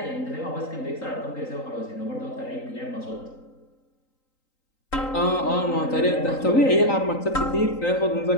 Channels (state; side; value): late; right; 3.9 ms